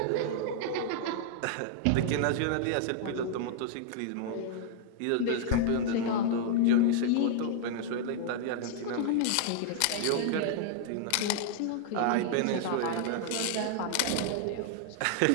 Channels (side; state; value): both; different; correlation -0.01